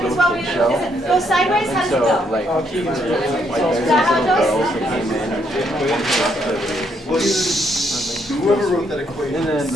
as well. Does it go sideways? How does it go? like, Is that how it goes? Whoever wrote that equation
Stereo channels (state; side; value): normal; both; correlation 0.73